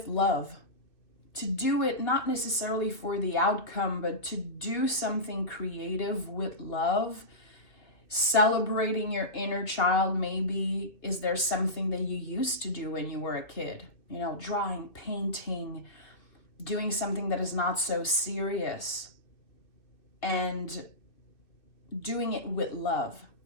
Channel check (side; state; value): right; late; 2.8 ms